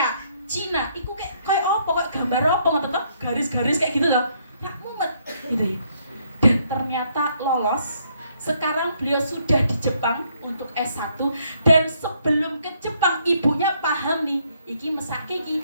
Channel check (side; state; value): both; inverted; correlation -0.70